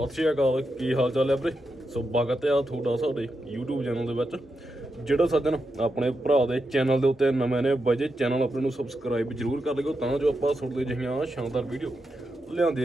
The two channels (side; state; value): both; normal; correlation 0.86